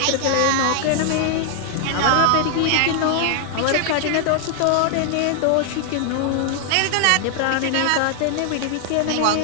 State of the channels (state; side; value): different; both; correlation 0.00